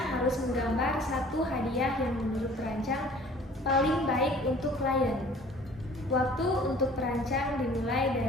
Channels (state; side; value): normal; both; correlation 0.50